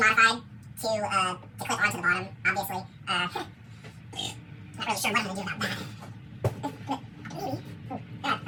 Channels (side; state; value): both; identical; correlation 1.00